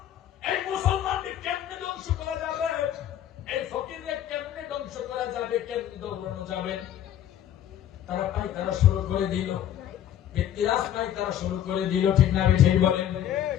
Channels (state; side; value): quieter; right; 10.9 dB